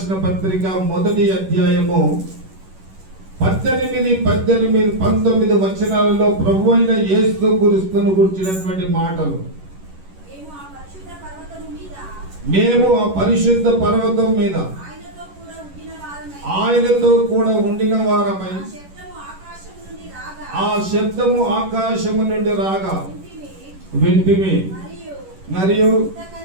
పత్రిక 1వ అధ్యాయము 18, 19 వచనాలలో ప్రభు అయిన యేసు క్రీస్తును గురించినటువంటి మాటలు. మేము ఆ పరిశుద్ధ పర్వతం మీద ఆయనతో కూడా ఉండిన వారమై ఆ శబ్దము ఆకాశము నుండి రాగా వింటిమి. మరియు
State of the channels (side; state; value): left; late; 11 ms